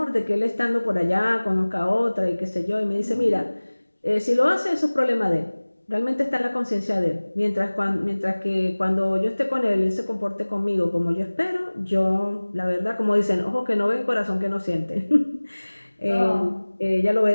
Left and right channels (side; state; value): both; inverted; correlation -1.00